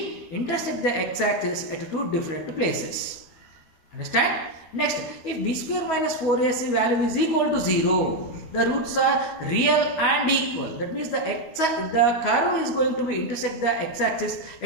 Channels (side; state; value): right; late; 13 ms